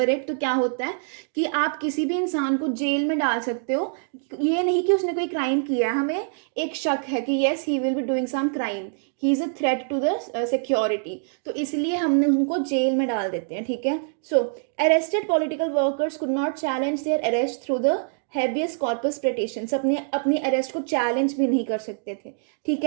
इट, तो क्या होता है कि आप किसी भी इंसान को जेल में डाल सकते हो, ये नहीं कि उसने कोई क्राइम किया है, हमें एक शक है कि yes he will be doing some crime, he is a threat to the security, तो इसलिए हमने उनको जेल में डाल देते हैं। ठीक है, so arrested political workers could not challenge their arrest through the habeas corpus petitions, अपनी अरेस्ट को चैलेंज भी नहीं कर सकते थे। ठीक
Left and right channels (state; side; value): silent; left; digital silence